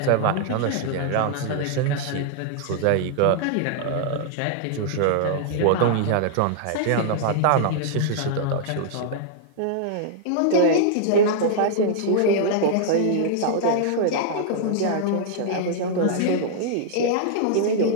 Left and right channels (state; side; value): different; both; correlation -0.01